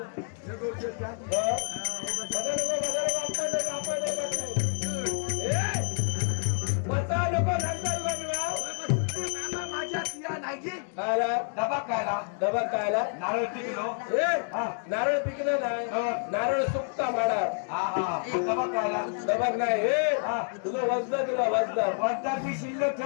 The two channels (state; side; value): silent; right; 59 dB below the other